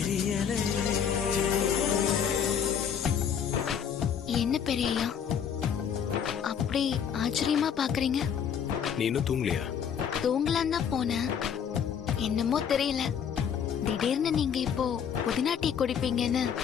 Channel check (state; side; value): quieter; right; 7.9 dB